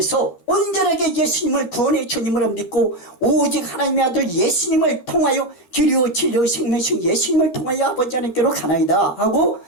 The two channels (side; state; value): right; late; 12 ms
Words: 온전하게 예수님을 구원의 주님으로 믿고 오직 하나님의 아들 예수님을 통하여 길이요 진리요 생명이신 예수님을 통하여 아버지 하나님께로 가나이다 하고